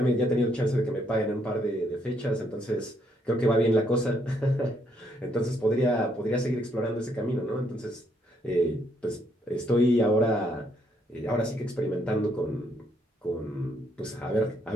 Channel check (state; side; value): normal; both; correlation 0.72